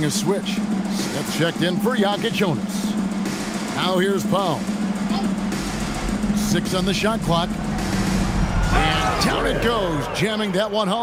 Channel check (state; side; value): identical; both; correlation 1.00